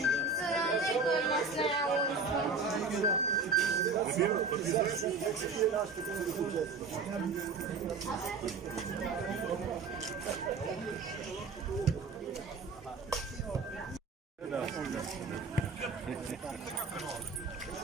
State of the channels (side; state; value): left; quieter; 4.3 dB